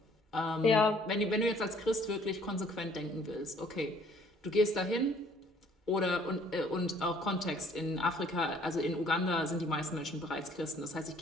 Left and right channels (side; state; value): both; normal; correlation 0.59